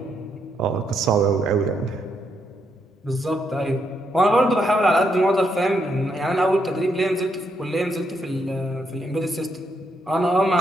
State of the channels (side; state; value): both; normal; correlation 0.78